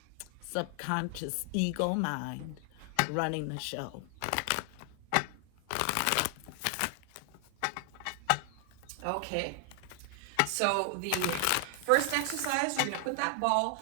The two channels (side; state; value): both; different; correlation 0.00